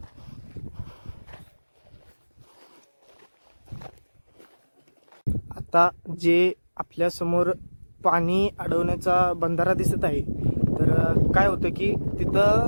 आता जे आपल्या समोर पाणी अडवण्याचा बंधारा दिसत आहे, तर काय होतं की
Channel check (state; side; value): inverted; both; correlation -1.00